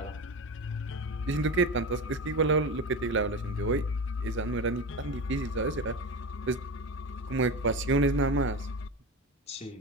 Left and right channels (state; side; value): normal; both; correlation 0.23